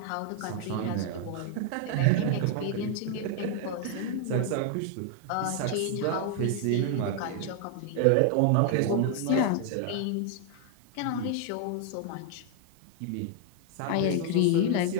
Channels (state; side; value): different; both; correlation 0.00